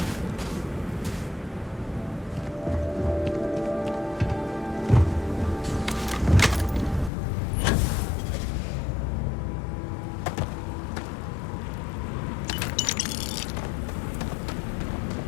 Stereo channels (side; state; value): right; drops out; at 7.1 s